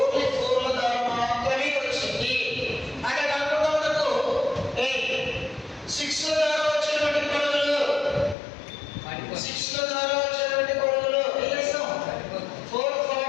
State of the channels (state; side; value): drops out; right; at 8.3 s